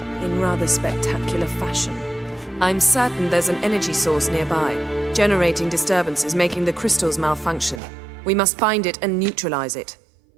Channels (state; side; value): drops out; left; at 7.8 s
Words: in rather spectacular fashion. I'm certain there's an energy source nearby, generating disturbances, making the crystals malfunction. We must find it and neutralize it.